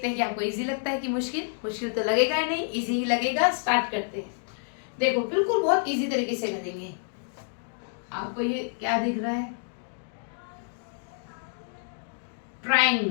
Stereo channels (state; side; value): silent; right; digital silence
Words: हैं कि आपको इजी लगता है कि मुश्किल तो लगेगा ही नहीं, इजी ही लगेगा। स्टार्ट करते हैं। देखो, बिल्कुल बहुत इजी तरीके से करेंगे। आपको ये क्या दिख रहा है?